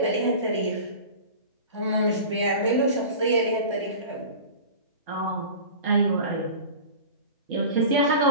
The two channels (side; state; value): both; inverted; correlation -0.36